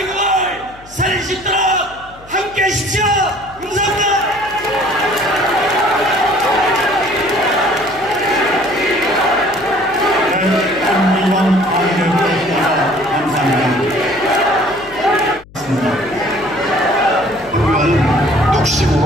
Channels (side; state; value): left; noise; hum, 23 dB below the sound